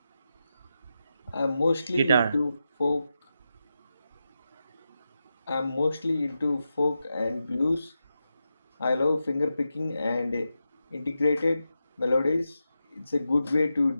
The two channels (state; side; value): inverted; both; correlation -0.89